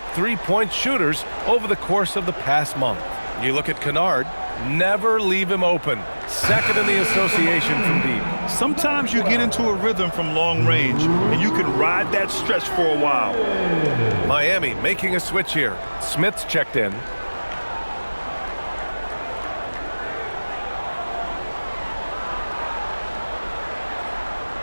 3-point shooters over the course of the past month. You look at Kennard, never leave him open. Second in the association from deep. Sometimes you get into a rhythm from long range, and you can ride that stretch for a while. Miami making a switch here. Smith's checked in.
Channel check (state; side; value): inverted; both; correlation -1.00